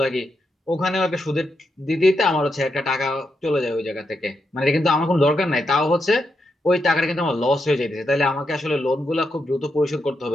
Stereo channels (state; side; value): normal; both; correlation 0.84